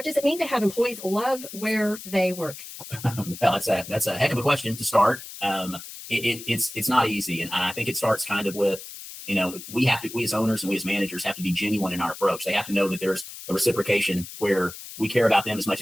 does it mean to have employees love where they work? Well, that's a heck of a question to start. It's not easy, and I think it starts kind of with, we as owners and we as managers have to be genuine in our approach. They have to know that there's a reciprocation where we care about them as much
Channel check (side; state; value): left; noise; hiss, 13 dB below the sound